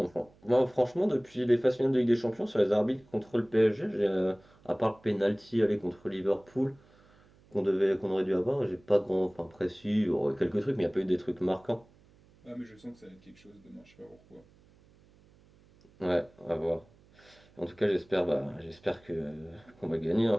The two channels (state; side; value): noise; right; hum, 29 dB below the sound